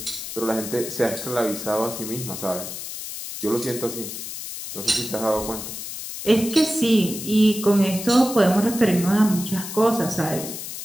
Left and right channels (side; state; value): left; noise; hiss, 8 dB below the sound